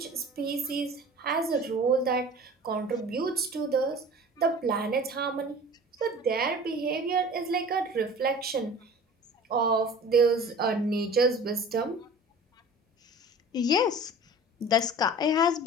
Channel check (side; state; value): both; normal; correlation 0.42